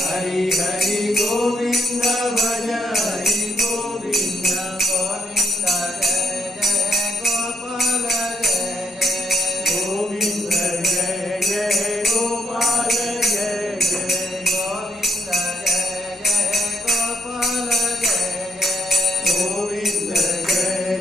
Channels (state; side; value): normal; both; correlation 0.75